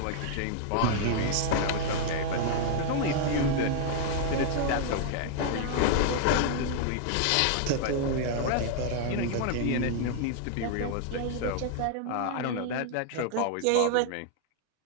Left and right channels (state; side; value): different; both; correlation -0.01